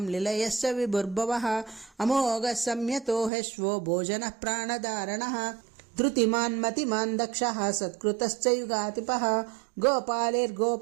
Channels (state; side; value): drops out; left; at 3.3 s